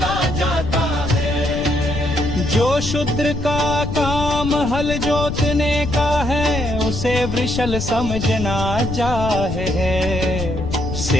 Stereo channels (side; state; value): left; noise; rumble, 5 dB below the sound